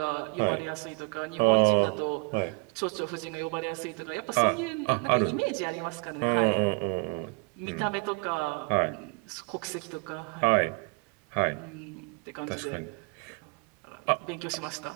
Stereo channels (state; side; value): quieter; left; 34.1 dB